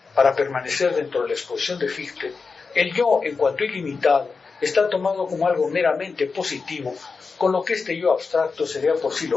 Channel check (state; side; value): quieter; right; 4.7 dB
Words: para permanecer dentro de la exposición de Fichte, el yo, en cuanto ilimitado, está tomado como algo meramente positivo, con lo que este yo abstracto sería por sí